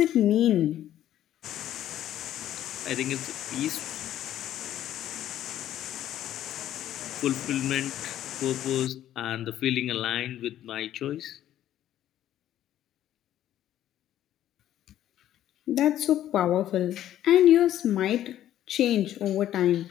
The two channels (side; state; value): right; quieter; 12.1 dB